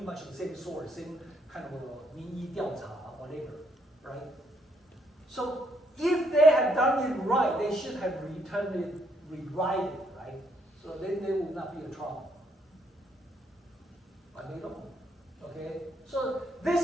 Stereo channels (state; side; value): normal; both; correlation 0.72